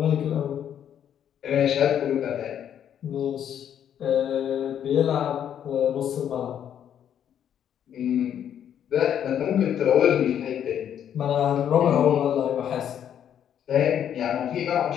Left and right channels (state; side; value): quieter; right; 9.5 dB